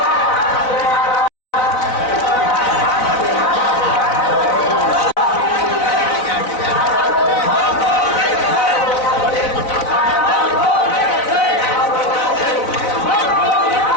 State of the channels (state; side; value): late; right; 4.0 ms